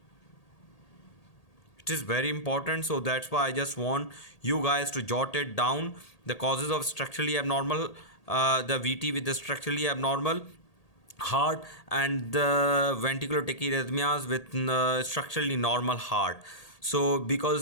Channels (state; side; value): late; right; 1.8 ms